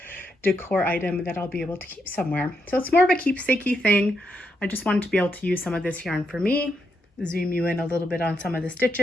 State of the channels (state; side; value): normal; both; correlation 0.81